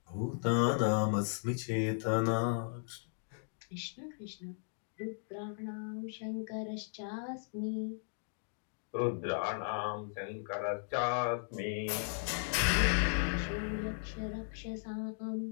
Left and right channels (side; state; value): right; silent; digital silence